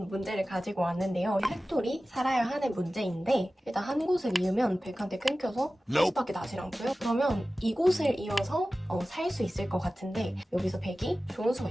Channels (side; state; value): both; normal; correlation 0.96